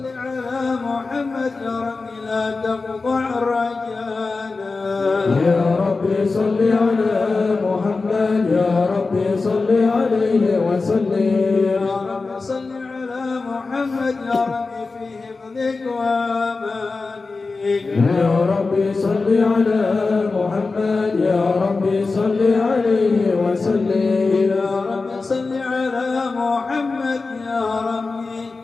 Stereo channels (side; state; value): right; quieter; 3.9 dB